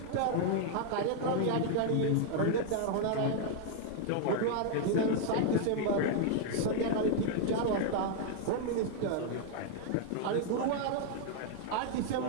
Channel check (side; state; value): both; different; correlation 0.00